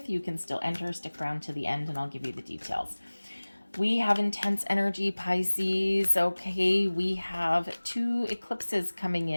you can still enter. Stick around to the end and I'll give you the details. We have intense energy, Pisces. Okay, we have two eclipses coming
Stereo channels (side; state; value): both; inverted; correlation -1.00